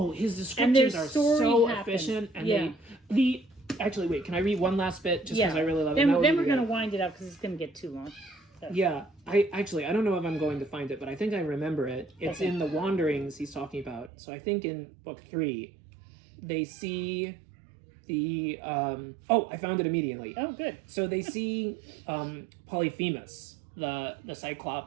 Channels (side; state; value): left; drops out; at 14.1 s